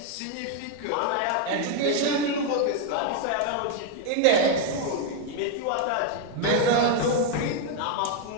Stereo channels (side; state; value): both; different; correlation 0.01